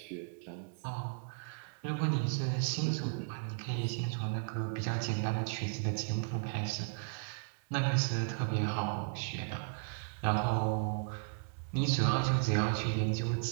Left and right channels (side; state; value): left; silent; 54 dB below the other